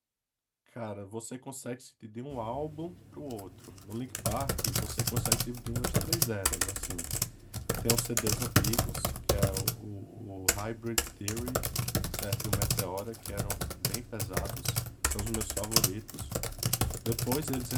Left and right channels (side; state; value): both; identical; correlation 1.00